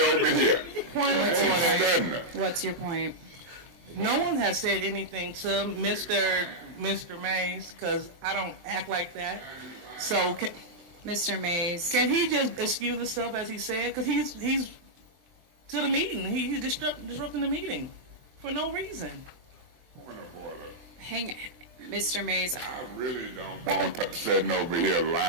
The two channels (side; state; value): left; late; 24 ms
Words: over here. Point of order. What's What's your point? No one has said anything to Mr. Mays because I don't act like that. So, Mr. Mays, can he just excuse himself as he said? Because he's to the meeting. He's disrupting the meeting for no reason. Point of order. Mr. Mays. I really don't want her sitting over here